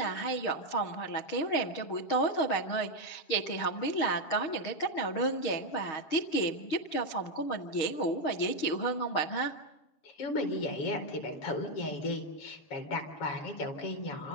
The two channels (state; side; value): late; right; 6.4 ms